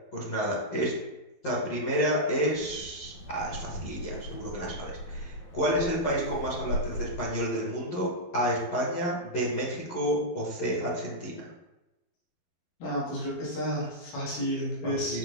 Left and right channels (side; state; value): right; late; 12 ms